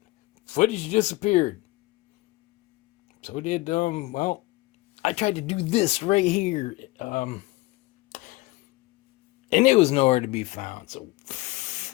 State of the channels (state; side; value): quieter; right; 20.4 dB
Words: footage disappeared. So did well, I tried to do this right here, and it was nowhere to be found. So